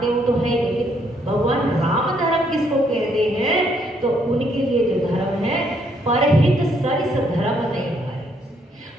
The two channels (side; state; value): both; normal; correlation 0.70